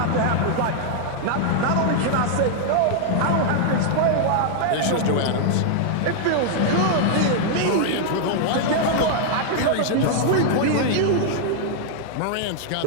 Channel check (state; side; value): different; both; correlation -0.01